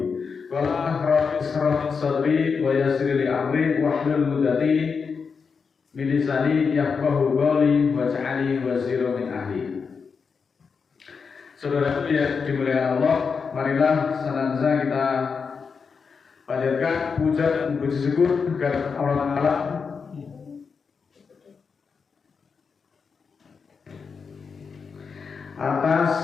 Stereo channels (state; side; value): quieter; right; 5.6 dB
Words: Wala rabbi sadri wa yassir li amri wahlul 'uqdatam min lisani yafqahu qawli waj'alni waziran min ahli. Saudara yang dimuliakan Allah, marilah senantiasa kita panjatkan puja dan puji syukur kepada Allah Ta'ala